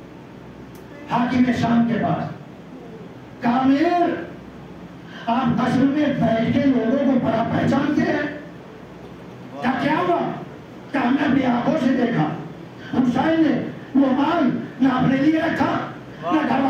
حاکم شام کے پاس، کہا امیر، آپ قصر میں بیٹھ کے لوگوں کو بڑا پہچانتے ہیں، کیا ہوا؟ کہ ہم نے اپنی آنکھوں سے دیکھا حسین نے وہ مال نہ اپنے لیے رکھا، نہ گھر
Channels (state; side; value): identical; both; correlation 1.00